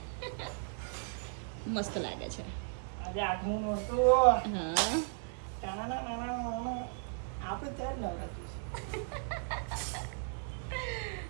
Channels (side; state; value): left; silent; 54 dB below the other